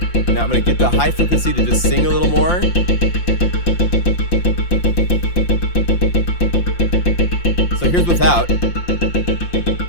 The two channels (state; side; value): late; right; 5.8 ms